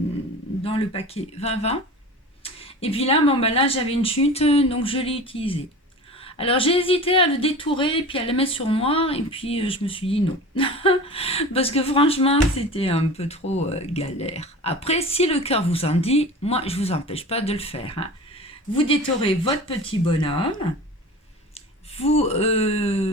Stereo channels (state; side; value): normal; both; correlation 0.35